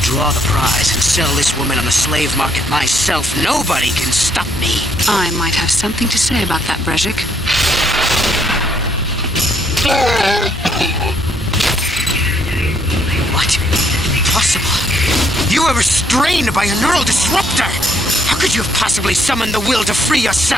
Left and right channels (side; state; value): both; normal; correlation 0.70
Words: the prize and sell this woman on the slave market myself, nobody can stop me. I might have something to say about that, Brezhik. What? Impossible. You were restrained by a neural disruptor. How could you have possibly summoned the will to free